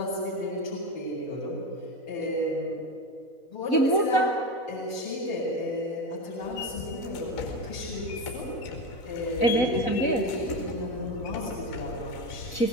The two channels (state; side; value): late; right; 4.0 ms